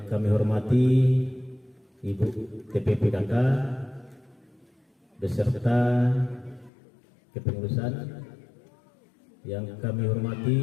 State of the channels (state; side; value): drops out; right; at 6.7 s